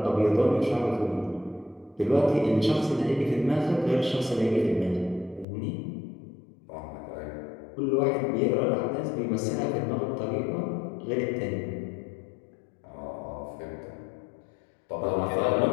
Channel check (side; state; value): right; drops out; at 5.5 s